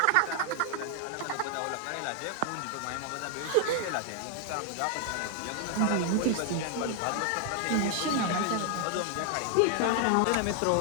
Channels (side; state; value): both; different; correlation 0.00